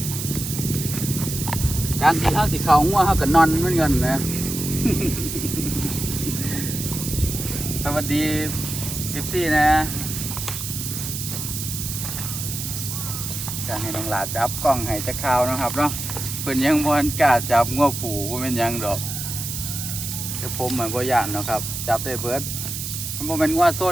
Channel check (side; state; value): right; noise; hiss, 5 dB below the sound